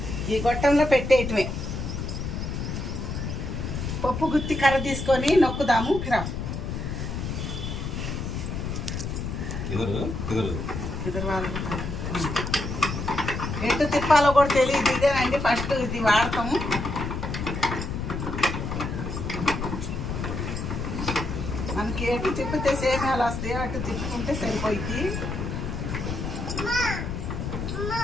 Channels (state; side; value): noise; left; rumble, 4 dB below the sound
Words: ఈ గొట్టంలో పెట్టేయటమే. పప్పు గుత్తి కర్ర తీసుకొని నొక్కుదాము. ఎటు తిప్పాలో కూడా తెలియదు. ఇదేనండి ఫస్ట్ ఇది వాడతాము. మనకి ఎటు తిప్పితే సేమియాలు వస్తాయో అటు తిప్పుకుంటే సరిపోయింది.